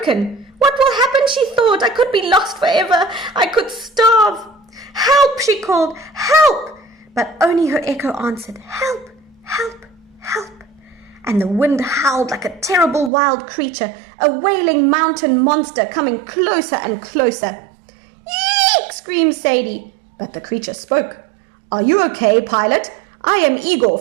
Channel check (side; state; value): left; drops out; at 13.1 s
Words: What will happen, she thought. I could be lost forever. I could starve. Help, she called. Help! But only her echo answered. Help! Help! Help! And the wind howled like a terrible wild creature, a wailing mountain monster coming closer and closer. Yeek! Screamed Sadie. But the creature spoke. Are you okay, pilot? I am Igor